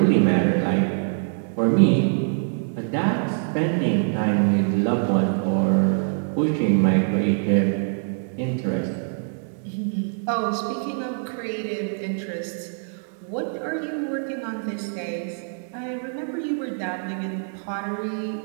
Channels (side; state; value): left; silent; 62 dB below the other